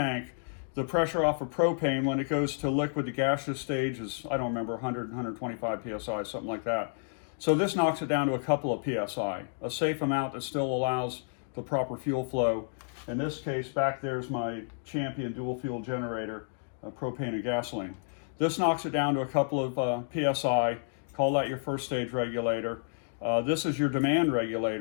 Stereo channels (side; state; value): right; silent; digital silence